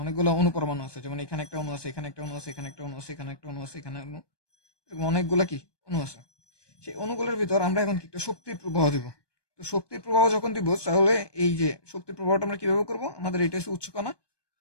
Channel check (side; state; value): right; late; 1.2 ms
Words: অনেকগুলো অণু পরমাণু আছে, যেমন এখানে একটা অণু আছে, এখানে একটা অণু আছে, এখানে একটা অণু আছে, এখানে একটা অণু আছে, এখানে অণু, এরকম অনেকগুলো কি অণু আছে। সেই অণুগুলোর ভিতর আমরা এখন কি একটা শক্তির প্রবাহ দিব। তো শক্তির প্রবাহ যখন দিব, তাহলে এই যে শক্তির প্রবাহটা আমরা কিভাবে করব, আমাদের এটা হচ্ছে উচ্চকণা,